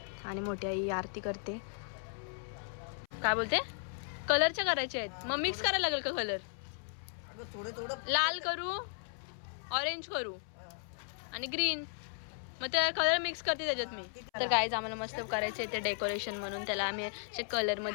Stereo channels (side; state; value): right; silent; 54 dB below the other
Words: आणि मोठी आई आरती करते. काय बोलते. कलरच्या करायचे आहेत मग मिक्स करायला लागेल का कलर. लाल करू ऑरेंज करू आणि ग्रीन मग ते कलर मिक्स करते त्याच्यात मी. तर गाईज आम्हाला मस्त करायचे ते डेकोरेशन म्हणून त्याला आम्ही असे कलर